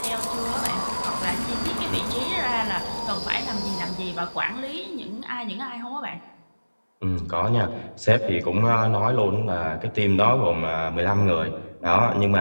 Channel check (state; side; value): inverted; both; correlation -1.00